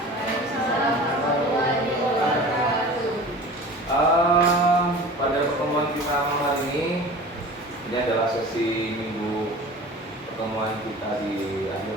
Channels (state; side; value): normal; both; correlation 0.39